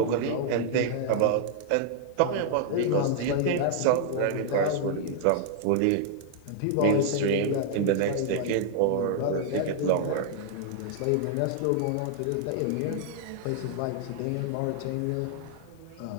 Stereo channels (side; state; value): both; different; correlation -0.01